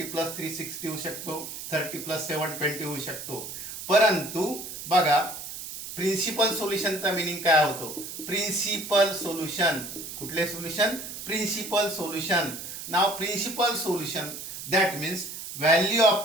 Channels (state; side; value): noise; right; hiss, 9 dB below the sound